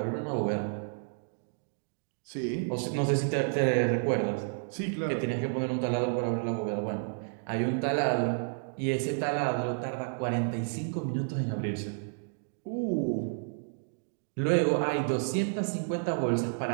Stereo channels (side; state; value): left; silent; digital silence